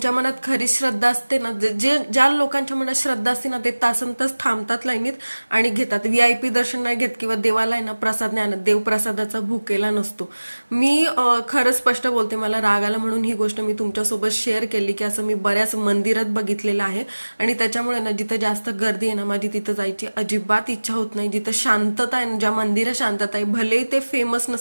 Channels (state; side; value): inverted; both; correlation -1.00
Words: मनात खरी श्रद्धा असते ना, जे ज्या लोकांच्या मनात श्रद्धा असते ना, ते तासनतास थांबतात लाईनीत आणि घेतात. VIP दर्शन नाही घेत किंवा देवाला आहे ना प्रसाद नाही आणत. देव प्रसादाचा भुकेला नसतो. मी खरंच स्पष्ट बोलते, मला राग आला म्हणून ही गोष्ट मी तुमच्यासोबत शेअर केली की असं मी बऱ्याच मंदिरात बघितलेलं आहे. आणि त्याच्यामुळे ना जिथं जास्त गर्दी आहे ना, माझी तिथं जायची अजिबात इच्छा होत नाही. जिथं शांतता आहे, ज्या मंदिरात शांतता आहे, भलेही ते फेमस